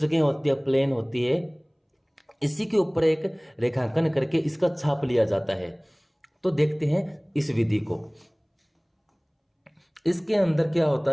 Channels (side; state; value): both; identical; correlation 1.00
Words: होती है, प्लेन होती है, इसी के ऊपर एक रेखांकन करके इसका छाप लिया जाता है। तो देखते हैं इस विधि को। इसके अंदर क्या